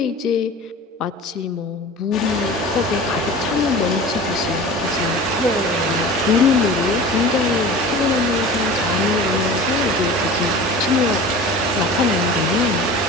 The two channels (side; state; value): both; normal; correlation 0.37